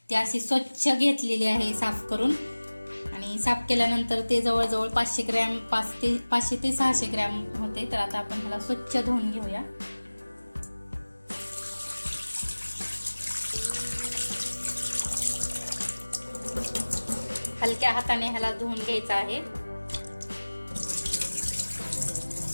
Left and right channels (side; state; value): both; inverted; correlation -1.00